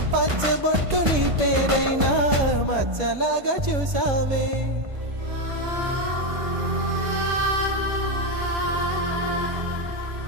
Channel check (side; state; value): left; late; 1.5 ms